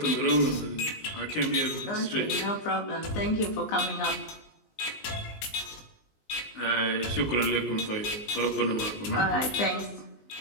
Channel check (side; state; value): right; late; 20 ms